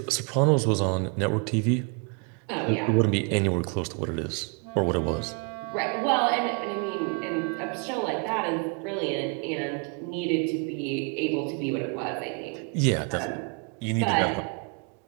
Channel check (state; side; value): quieter; left; 35.2 dB